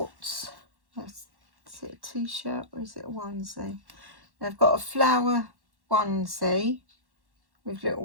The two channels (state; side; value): late; left; 1.1 ms